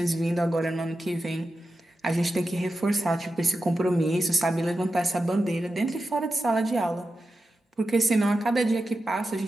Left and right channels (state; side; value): normal; both; correlation 0.90